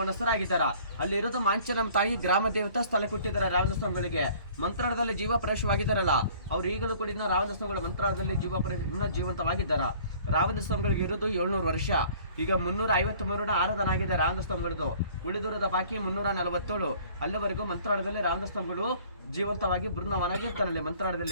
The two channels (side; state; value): both; inverted; correlation -0.53